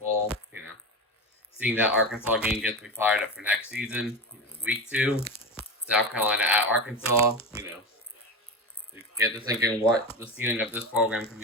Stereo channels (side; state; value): both; normal; correlation 0.21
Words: Seeing that Arkansas game gets me fired up for next season. Week 2, South Carolina at Arkansas. Get to thinking what the ceiling of this program can